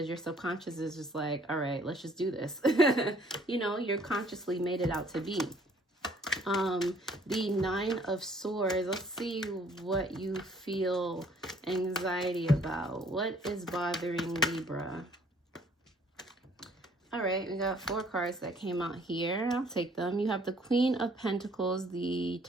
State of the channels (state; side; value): normal; both; correlation 0.60